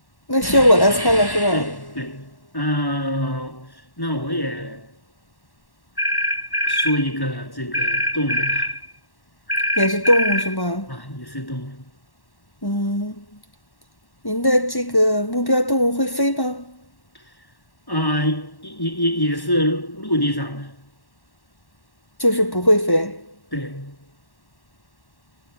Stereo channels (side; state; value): right; late; 1.1 ms